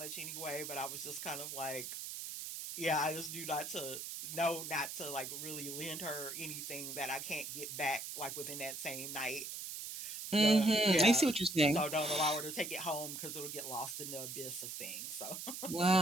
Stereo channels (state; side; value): noise; right; hiss, 7 dB below the sound